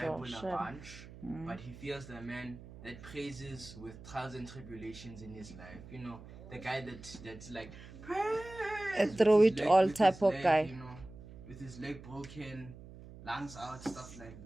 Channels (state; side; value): noise; right; hum, 16 dB below the sound